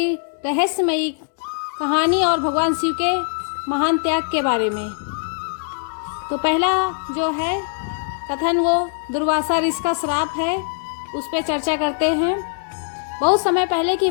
रहस्यमयी कहानी और भगवान शिव के महान त्याग के बारे में। तो पहला जो है कथन वो दुर्वासा ऋषि का श्राप है, उस पर चर्चा करते हैं। बहुत समय पहले की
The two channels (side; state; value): right; silent; digital silence